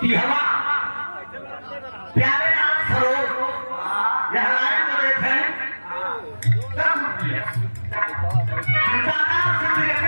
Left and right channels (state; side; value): inverted; both; correlation -1.00